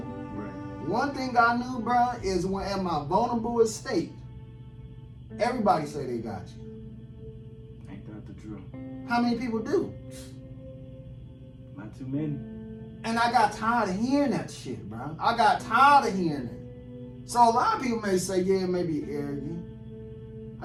One thing I knew, bro, is when at my vulnerable state, everybody say they got you. Ain't that the truth? How many people do? Not too many. And I got tired of hearing that shit, bro. I got tired of hearing it. So a lot of people may say, yeah, it may be arrogant.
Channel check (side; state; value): both; identical; correlation 1.00